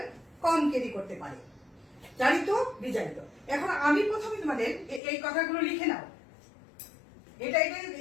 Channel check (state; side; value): drops out; right; at 5.0 s